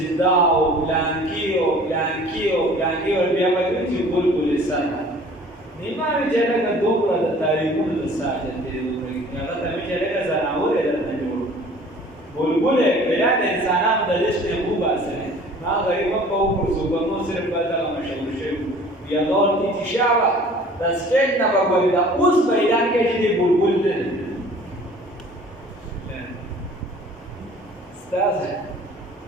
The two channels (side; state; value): both; normal; correlation 0.49